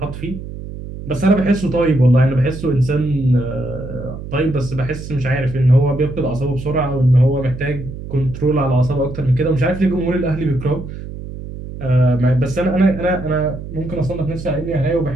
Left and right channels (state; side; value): noise; right; hum, 10 dB below the sound